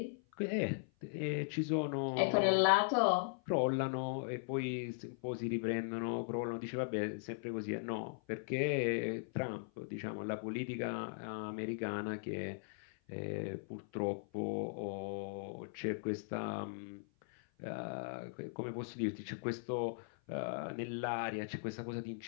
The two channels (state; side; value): silent; right; 52 dB below the other